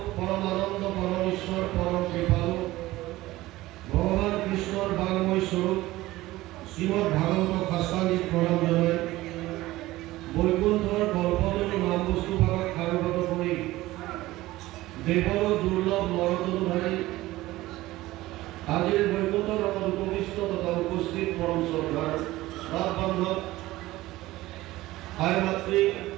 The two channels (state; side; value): quieter; left; 17.5 dB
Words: পরমানন্দ পরমেশ্বর পরম কৃপালু ভগবান কৃষ্ণর বাংময় স্বরূপ শ্রীমদ ভাগবত শাস্ত্রাদিক প্রণাম জানাই বৈকুণ্ঠর কল্পতরু নাম বস্তু ভাগত কারুগত করে দেবর দুর্লভ নরতনুধারী আজির বৈকুণ্ঠ রকম উপবিষ্ট তথা উপস্থিত পরম শ্রদ্ধার রাত বান্ধব মাতৃ